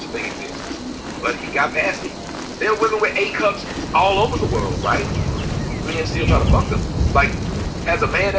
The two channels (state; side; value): identical; both; correlation 1.00